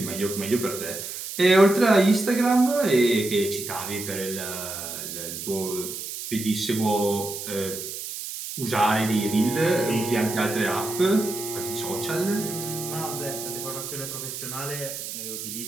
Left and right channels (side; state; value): right; noise; hiss, 7 dB below the sound